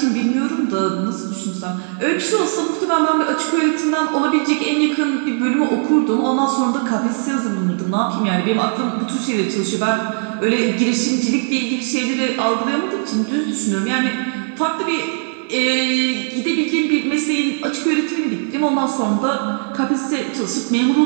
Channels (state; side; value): silent; left; 60 dB below the other